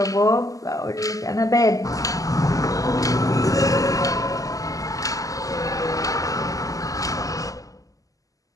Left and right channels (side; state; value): right; late; 0.17 ms